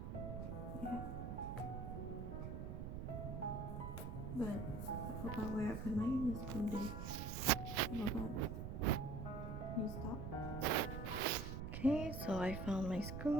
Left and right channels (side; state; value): right; noise; rumble, 5 dB below the sound